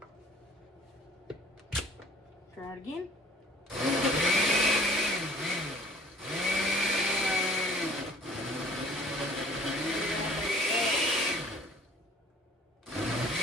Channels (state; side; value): normal; both; correlation 0.53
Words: Try it again.